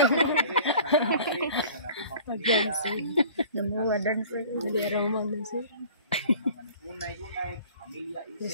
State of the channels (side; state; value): both; inverted; correlation -0.46